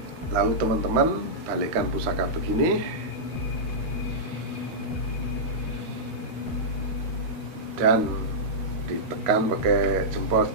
lalu teman-teman balikkan pusaka begini dan ditekan pakai jempol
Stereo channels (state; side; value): late; left; 13 ms